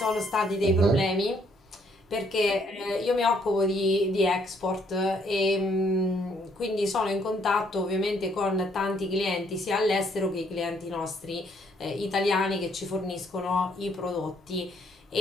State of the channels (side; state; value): both; normal; correlation 0.68